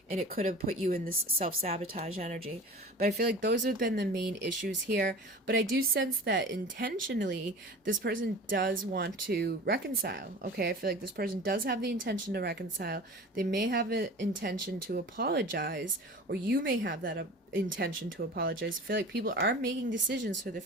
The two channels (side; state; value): both; normal; correlation 0.38